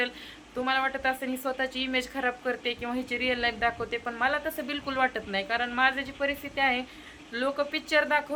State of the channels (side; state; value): both; identical; correlation 1.00